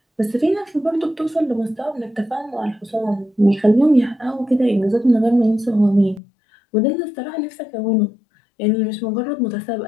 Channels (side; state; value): right; drops out; at 6.2 s